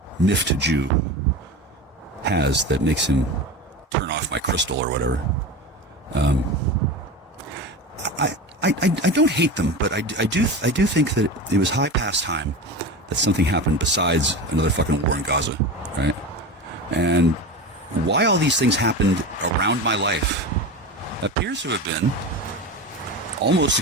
miffed Jew has that makes him turn off my crystal or whatever. I don't hate them, but I do think that it was high past time that something happened besides another fucking war in Gaza, right? And why all these things happened around my life appears to have been almost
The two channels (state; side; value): normal; both; correlation 0.27